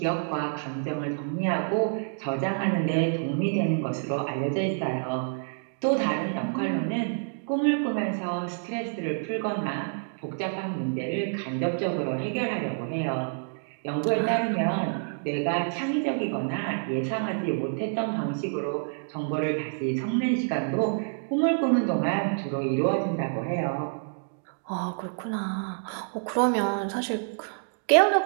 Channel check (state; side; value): silent; left; digital silence